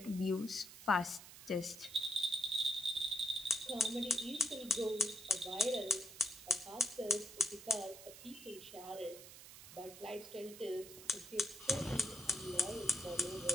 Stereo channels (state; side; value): noise; right; hiss, 15 dB below the sound